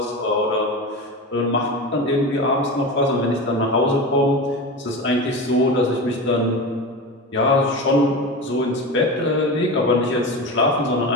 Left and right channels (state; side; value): normal; both; correlation 0.25